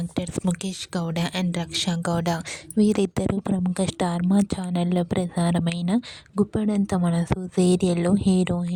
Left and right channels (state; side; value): identical; both; correlation 1.00